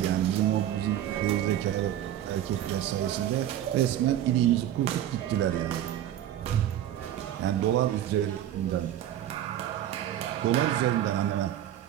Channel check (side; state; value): left; quieter; 11.8 dB